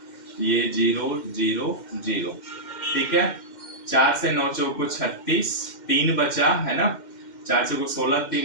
ये 0 0 0। ठीक है, 4 से 9 चौको 36 3 बचा है ना, 4 चौको 16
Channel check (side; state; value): right; late; 2.1 ms